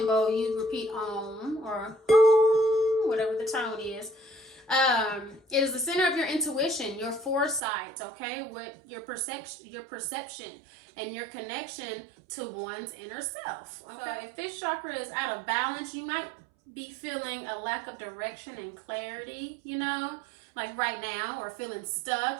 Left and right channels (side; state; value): left; drops out; at 7.6 s